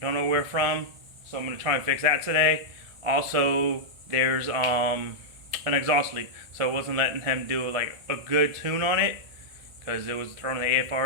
Don't know where from, so I'm going to try and fix that today. Also, there's an exhaust leak, so it wasn't letting him do like a good tune on it because it was throwing the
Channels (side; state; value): left; late; 1.9 ms